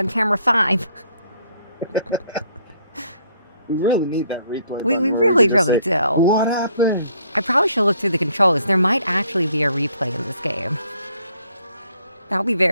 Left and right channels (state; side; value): inverted; both; correlation -0.66